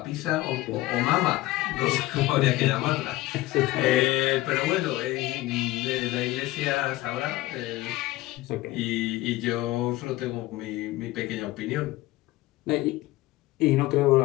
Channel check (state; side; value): quieter; right; 17.7 dB